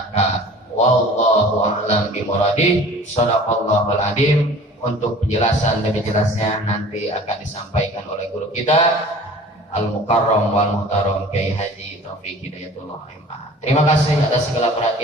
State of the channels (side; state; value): both; normal; correlation 0.45